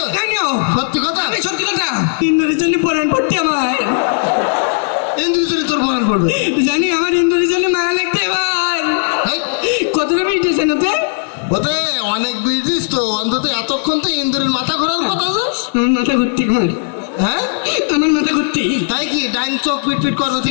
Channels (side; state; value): right; silent; digital silence